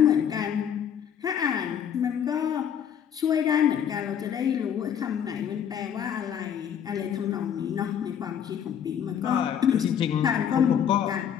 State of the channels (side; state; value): right; quieter; 8.7 dB